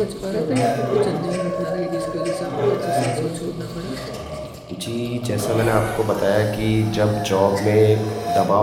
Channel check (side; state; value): both; identical; correlation 1.00